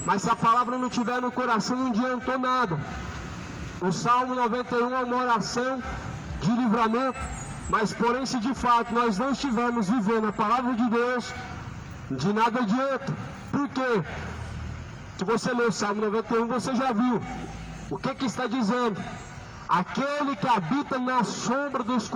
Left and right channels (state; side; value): identical; both; correlation 1.00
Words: mas se a palavra não estiver no coração, não adiantou nada. O Salmo 91 é uma oração de livramento, mas porém se de fato nós não estivermos vivendo a palavra de Deus, de nada adianta. Por quê? Se você ler o Salmo 91, você já viu o que está dizendo. Aquele que habita na sombra do